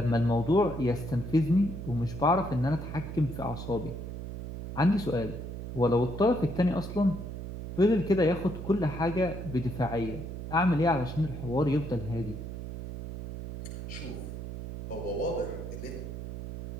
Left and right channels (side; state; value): right; noise; hum, 8 dB below the sound